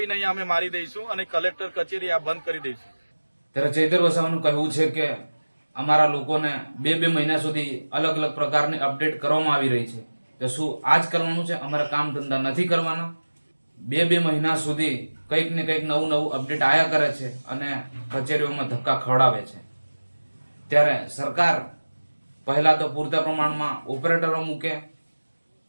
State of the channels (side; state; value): both; inverted; correlation -1.00